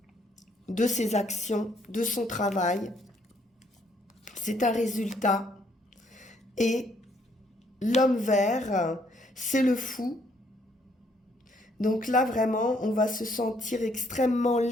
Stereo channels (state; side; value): normal; both; correlation 0.68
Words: de ses actions, de son travail. C'est un résultat. Et l'homme vert, c'est le fou. Donc là, vraiment, on va se sentir extrêmement